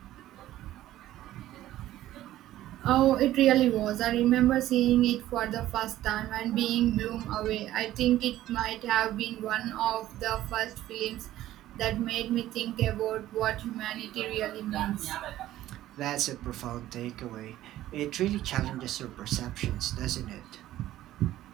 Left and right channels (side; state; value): left; quieter; 14.1 dB